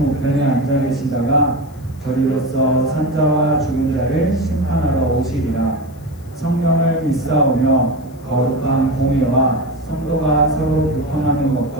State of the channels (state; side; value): noise; left; hiss, 28 dB below the sound